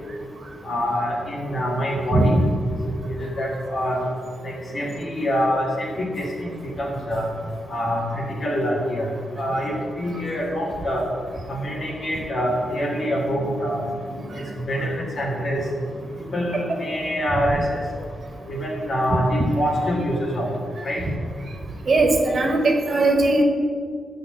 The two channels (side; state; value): both; normal; correlation 0.83